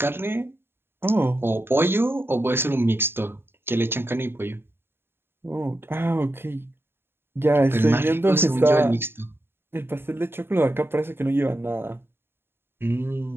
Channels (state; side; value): late; left; 0.11 ms